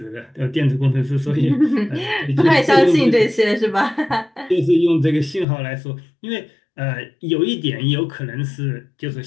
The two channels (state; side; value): drops out; right; at 5.5 s